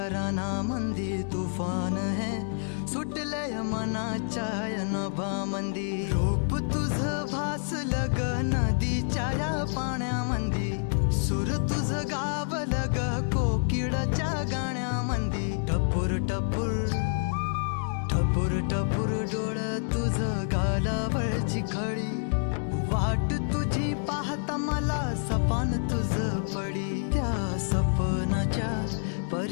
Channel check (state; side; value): silent; right; digital silence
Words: मंदी तुफान है सुटले मनाच्या नभामंदी रूप तुझ भासलं ग नदीच्या या पाण्यामंदी सूर तुझ गावलं ग कोकिळाच्या गाण्यामंदी टपूर टपूर टपूर टपूर डोळं तुझ गालावरची खळी वाट तुझी पाहता मला सपान तुझ पडी त्या सपनाच्या